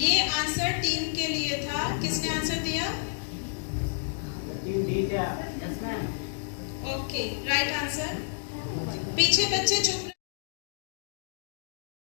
आंसर टीम के लिए था। किसने आंसर दिया? Okay, right answer. पीछे बच्चे चुप।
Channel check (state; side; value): silent; right; digital silence